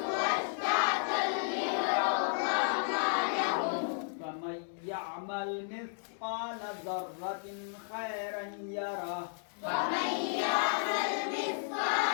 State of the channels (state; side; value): silent; right; digital silence